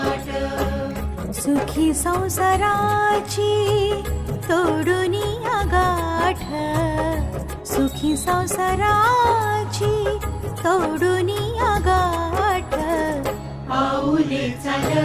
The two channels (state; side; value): identical; both; correlation 1.00